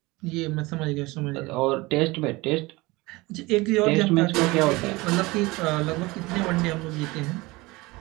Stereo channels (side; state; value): left; quieter; 22.3 dB